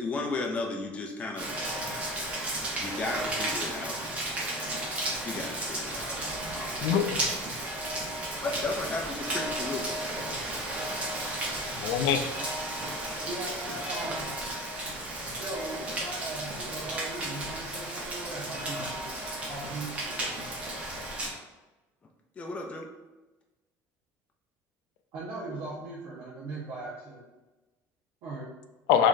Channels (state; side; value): normal; both; correlation 0.29